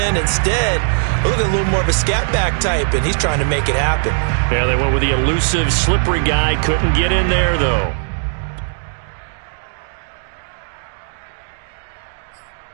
Instead, look at a little more of a scat back type, and he's trying to make it happen. Yeah, they went with the elusive, slippery guy. Couldn't get in there, though.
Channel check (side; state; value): left; silent; digital silence